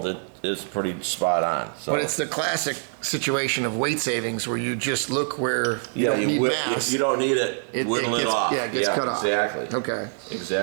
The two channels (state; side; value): silent; left; 60 dB below the other